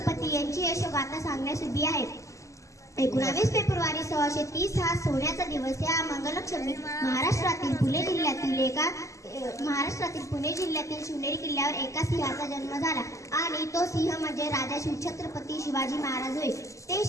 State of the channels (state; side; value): late; right; 0.15 ms